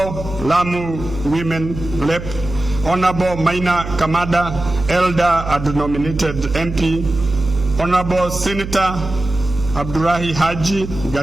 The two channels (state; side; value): noise; right; hum, 9 dB below the sound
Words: Lamu Women Lep, Honorable Maina Kamada, Elder and nominated MP, Honorable Senator Abdurahi Haji,